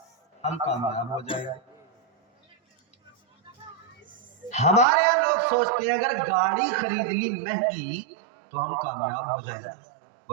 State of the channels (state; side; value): drops out; left; at 4.9 s